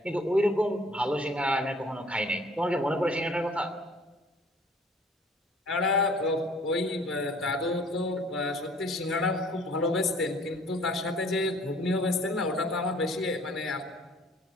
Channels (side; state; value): both; normal; correlation 0.54